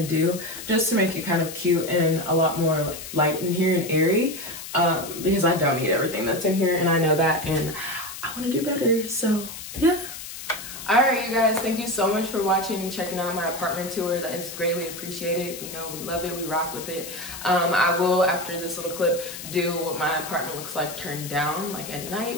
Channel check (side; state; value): left; noise; hiss, 11 dB below the sound